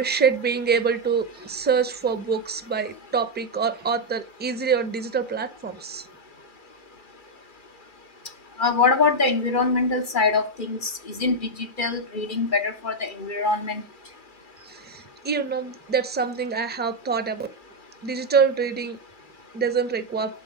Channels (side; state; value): right; late; 2.4 ms